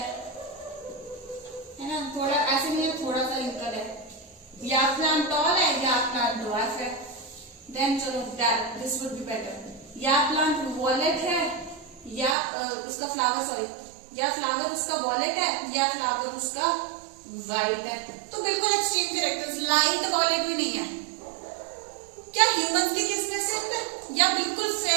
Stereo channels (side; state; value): left; drops out; at 12.4 s